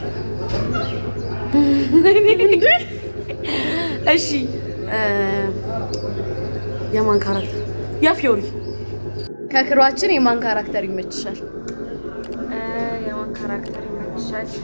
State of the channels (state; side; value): inverted; both; correlation -1.00